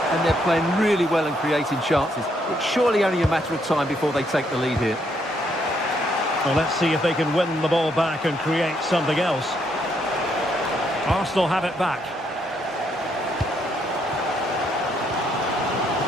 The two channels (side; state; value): both; normal; correlation 0.74